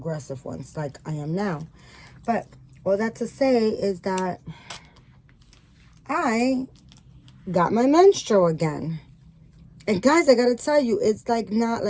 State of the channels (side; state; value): both; identical; correlation 1.00